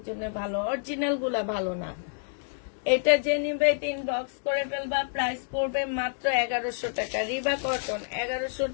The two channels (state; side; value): silent; right; digital silence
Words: জন্য ভালো, অরিজিনাল গুলা ভালো না। এটা যে নিবে এটা ইনবক্স করে ফেলবা। প্রাইস পড়বে মাত্র 1100 টাকা। রিবা কটন 1100